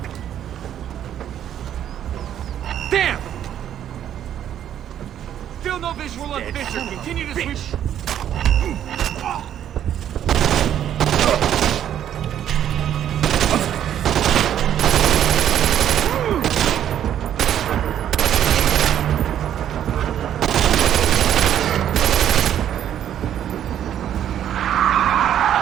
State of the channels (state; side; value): quieter; left; 10.4 dB